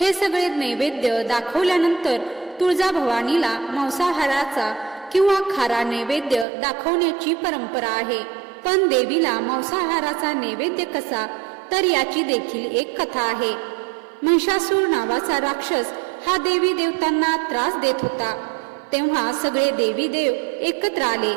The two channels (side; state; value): left; drops out; at 6.5 s